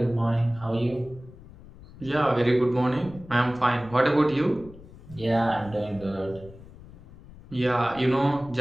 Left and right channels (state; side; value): noise; left; rumble, 19 dB below the sound